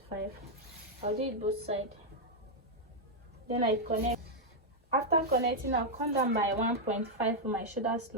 I'll do it both sides. Then I connect. After connecting, I'll come down by 1.5 for my shoulder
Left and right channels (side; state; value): both; normal; correlation -0.02